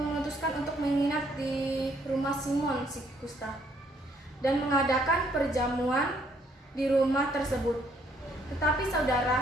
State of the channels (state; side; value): normal; both; correlation 0.67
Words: untuk menginap di rumah Simon si kusta dan mengadakan perjamuan di rumah tersebut. Tetapi